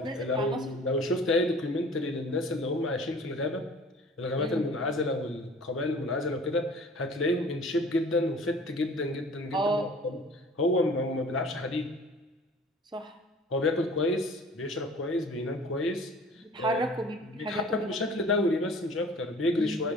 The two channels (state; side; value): normal; both; correlation 0.47